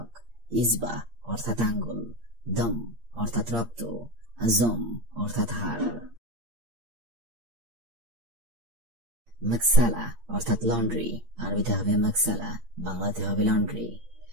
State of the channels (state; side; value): late; left; 8.7 ms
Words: ইসবা অর্থাৎ আঙ্গুল, দম অর্থাৎ রক্ত, আজম অর্থাৎ হাড়। মাকসালা অর্থাৎ লন্ড্রি, আরবিতে হবে মাকসালা, বাংলাতে হবে লন্ড্রি।